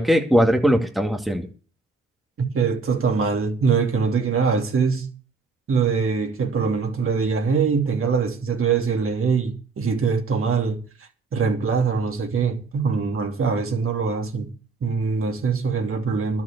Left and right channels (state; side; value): quieter; left; 3.9 dB